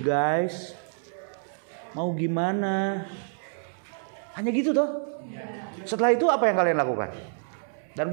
guys. Mau gimana? Hanya gitu toh. Setelah itu apa yang kalian lakukan? Dan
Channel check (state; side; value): silent; left; 60 dB below the other